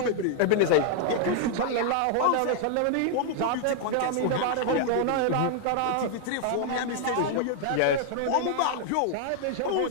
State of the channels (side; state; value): both; different; correlation 0.00